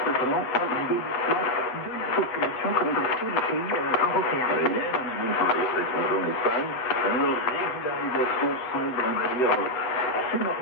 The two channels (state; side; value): late; right; 8.0 ms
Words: notamment au vieillissement de la population, comme dans tous les pays européens. Il y a énormément de travailleurs étrangers en Espagne. Leur régularisation semble, on va dire, assez